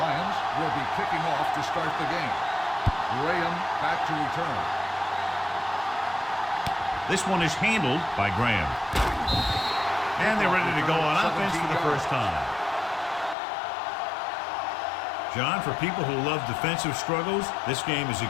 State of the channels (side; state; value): right; drops out; at 13.4 s